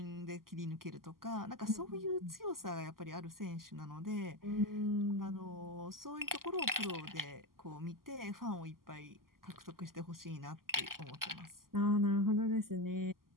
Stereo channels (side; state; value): left; late; 0.92 ms